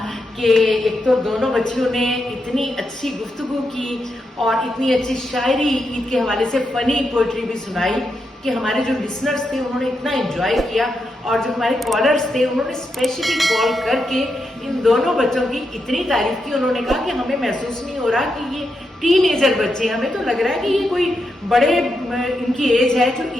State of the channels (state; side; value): normal; both; correlation 0.84